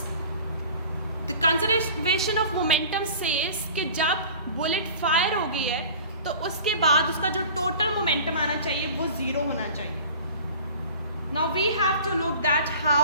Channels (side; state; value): both; inverted; correlation -0.42